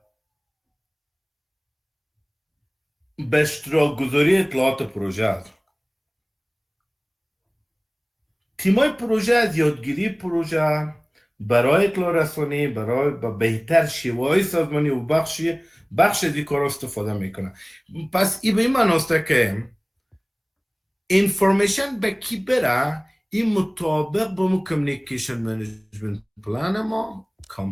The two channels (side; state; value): both; identical; correlation 1.00